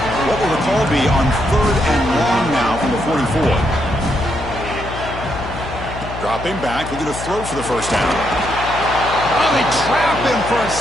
What will the call be on third and long now from the 44? Dropping back. We're going to throw for the first down. Oh, they trap him for a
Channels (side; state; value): left; noise; hum, 10 dB below the sound